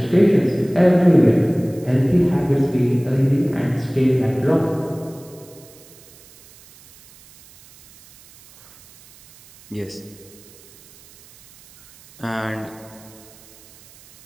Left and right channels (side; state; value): right; noise; hiss, 25 dB below the sound